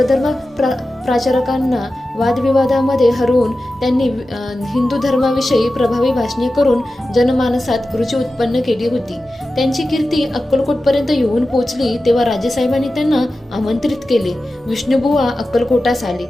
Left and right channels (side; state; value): both; normal; correlation 0.94